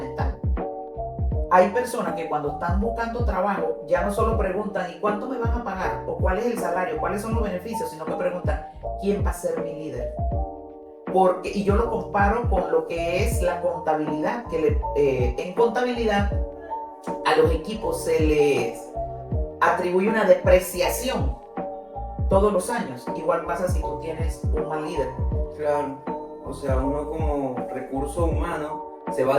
Hay personas que cuando están buscando trabajo ya no solo preguntan ¿y cuánto me van a pagar? O cuál es el salario, cuáles son los beneficios, sino que preguntan ¿quién va a ser mi líder? Y yo lo comparo con lo que es la contabilidad, que en contabilidad a los equipos se les atribuye una depreciación todos los años. Igual pasa si tú tienes un mal líder. Claro, o sea, uno como recurso humano se va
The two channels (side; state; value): both; identical; correlation 1.00